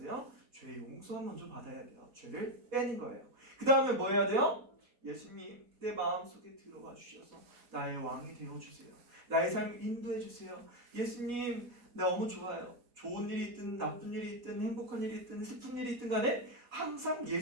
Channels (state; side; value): late; left; 4.1 ms